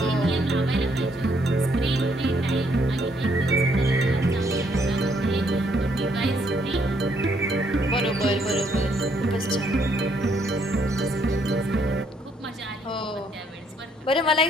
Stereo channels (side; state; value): both; normal; correlation 0.70